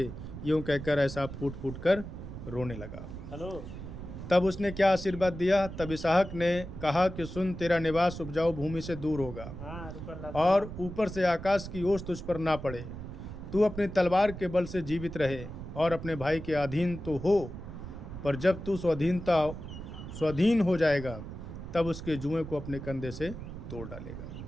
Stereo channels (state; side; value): noise; right; rumble, 10 dB below the sound